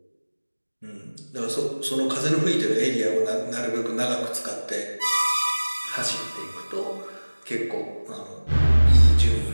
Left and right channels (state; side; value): inverted; both; correlation -1.00